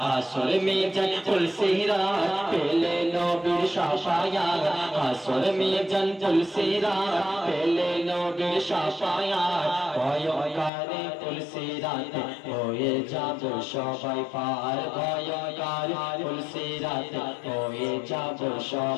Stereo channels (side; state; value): right; drops out; at 10.7 s